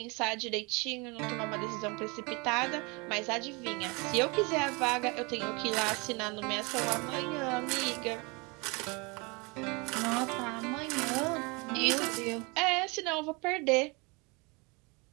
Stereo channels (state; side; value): quieter; left; 28.6 dB